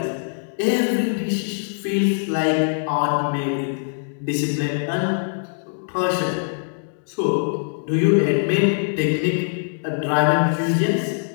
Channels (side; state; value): right; silent; digital silence